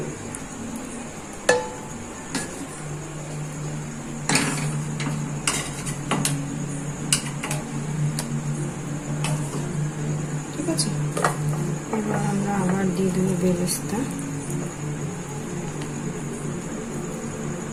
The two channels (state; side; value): identical; both; correlation 1.00